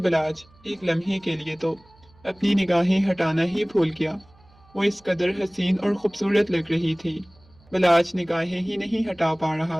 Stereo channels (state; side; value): noise; right; hum, 29 dB below the sound